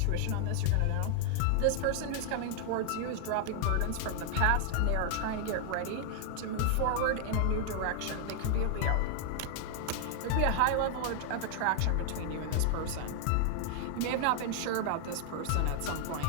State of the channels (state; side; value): different; both; correlation 0.00